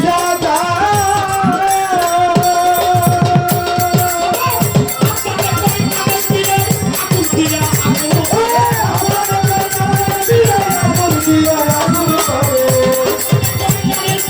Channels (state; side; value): identical; both; correlation 1.00